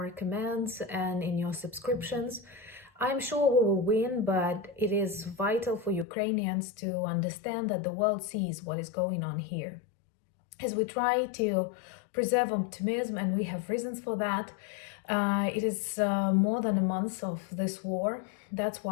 comments and in your subscriptions. I'm sure we will win, but it is vital for Ukrainians to understand that the world sees what is going on here. As we try to preserve optimism, and we have reasons for that, it is more than a month of this war. That's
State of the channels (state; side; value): drops out; right; at 6.1 s